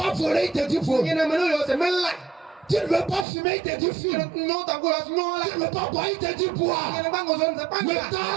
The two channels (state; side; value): drops out; left; at 3.2 s